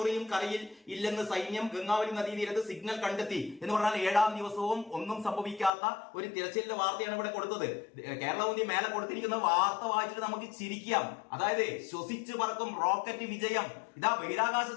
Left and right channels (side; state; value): right; drops out; at 5.7 s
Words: കരയിൽ ഇല്ലെന്ന് സൈന്യം ഗംഗാവലി നദീതീരത്ത് സിഗ്നൽ കണ്ടെത്തി എന്ന് പറഞ്ഞാൽ 7-ാം ദിവസവും ഒന്നും സംഭവിക്കാത്ത ഒരു തിരച്ചിലിന്റെ വാർത്തയാണ് ഇവിടെ കൊടുത്തത്. കേരളകൗമുദി മേലെ കൊടുത്തിരിക്കുന്ന വാർത്ത വായിച്ചിട്ട് നമുക്ക് ചിരിക്കാം. അതായത് ശ്വസിച്ചു പറക്കും റോക്കറ്റ് വിജയം. ഇതാ